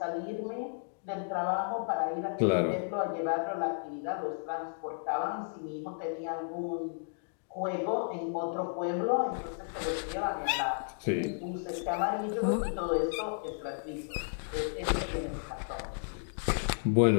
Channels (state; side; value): silent; right; digital silence